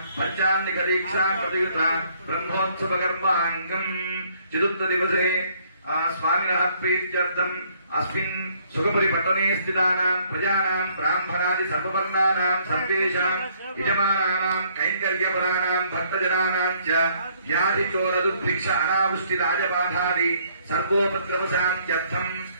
पंचान्निक दीक्षा प्रयुत ब्रह्मोत्सव कर्मांगम् चतुर्थ दिवसे स्वामिनः प्रीत्यर्थम् अस्मिन् सुखपुरीपट्टने स्थितानाम् प्रजानाम् ब्राह्मणादि सर्ववर्णानाम् सर्वेषाम् यजमानानाम् कैङ्कर्यपराणाम् भक्तजनानाम् च व्याधिचोरदुर्भिक्ष अनावृष्टि राजबाधादि सर्वोपद्रवशान्त्यर्थम्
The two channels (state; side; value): inverted; both; correlation -0.65